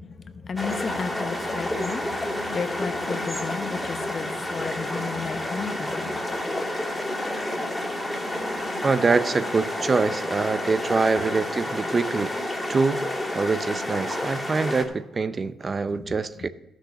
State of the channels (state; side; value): normal; both; correlation 0.88